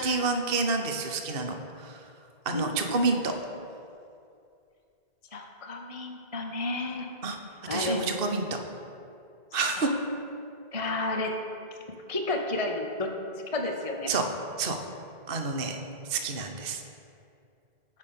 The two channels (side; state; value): left; late; 2.0 ms